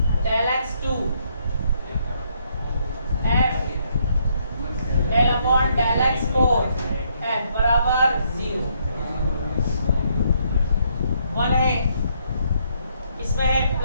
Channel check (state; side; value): inverted; both; correlation -0.72